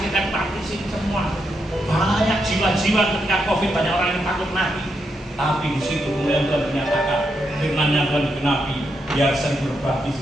saya baptisin semua. Banyak jiwa-jiwa ketika COVID, banyak orang yang takut mati. Tapi di situ kemudian Tuhan menyatakan, firman-Nya Tuhan digenapi, biar saya berbaptis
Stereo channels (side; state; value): both; normal; correlation 0.82